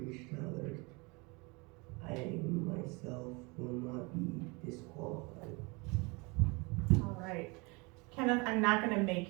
to others. I myself will not be disqualified. All right. Kenneth, I'm not going to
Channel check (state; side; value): quieter; left; 28.0 dB